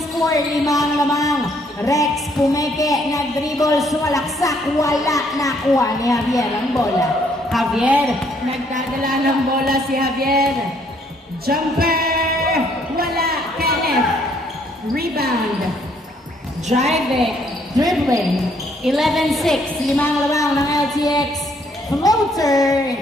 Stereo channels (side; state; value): both; normal; correlation 0.67